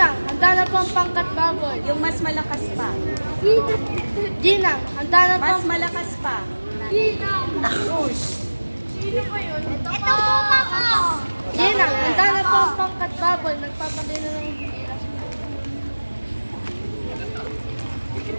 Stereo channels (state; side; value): inverted; both; correlation -1.00